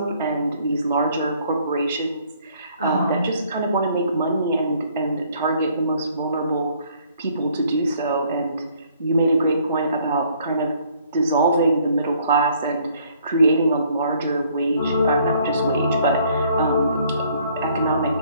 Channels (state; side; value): inverted; both; correlation -0.62